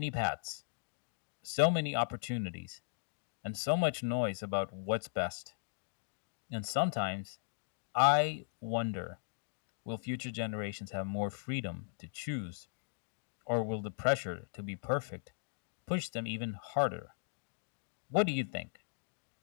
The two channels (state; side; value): silent; right; digital silence